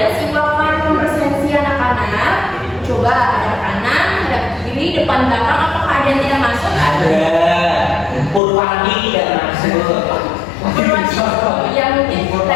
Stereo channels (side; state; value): right; drops out; at 8.4 s